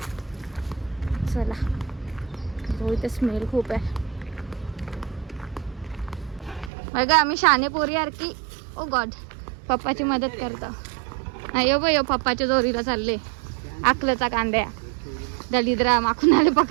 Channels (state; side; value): drops out; left; at 6.7 s